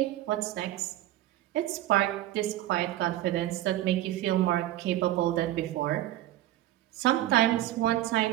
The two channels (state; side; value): quieter; left; 14.5 dB